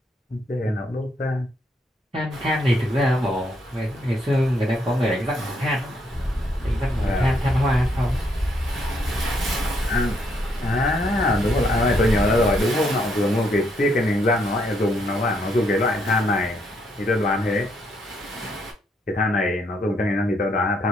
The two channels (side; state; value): both; normal; correlation 0.73